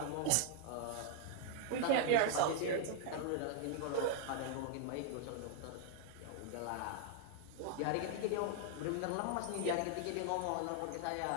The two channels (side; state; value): both; different; correlation 0.00